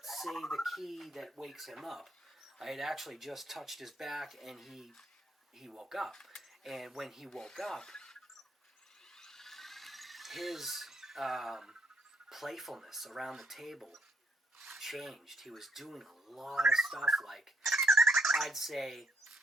say the key that wakes him up. I had actually just touched his back, and he woke up. And when he woke up, his playfulness around the table changed. He was doing a lot of stuff, like, I'd say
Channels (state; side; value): normal; both; correlation 0.72